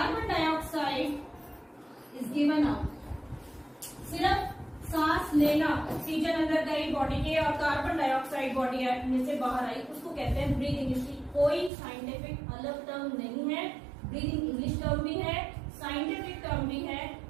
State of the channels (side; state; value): left; drops out; at 11.7 s